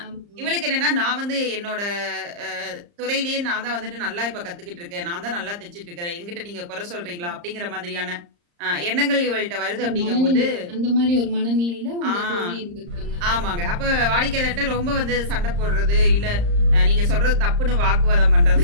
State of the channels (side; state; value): left; late; 35 ms